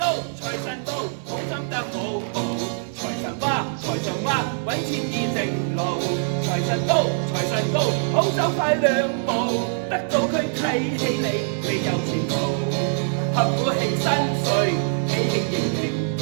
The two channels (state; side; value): silent; left; digital silence